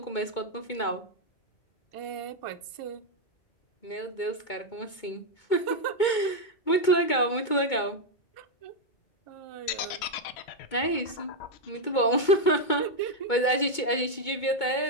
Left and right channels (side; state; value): right; late; 2.2 ms